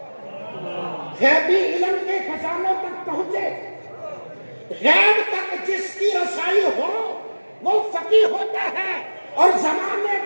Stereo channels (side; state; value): both; inverted; correlation -1.00